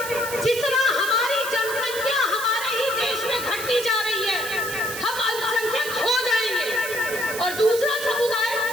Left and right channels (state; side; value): noise; right; hiss, 8 dB below the sound